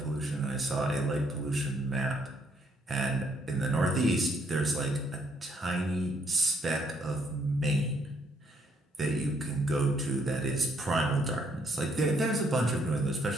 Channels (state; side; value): normal; both; correlation 0.70